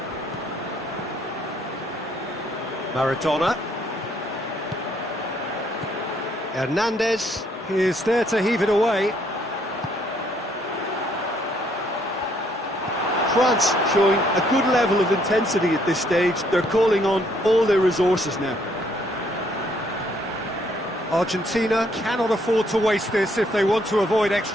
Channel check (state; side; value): normal; both; correlation 0.68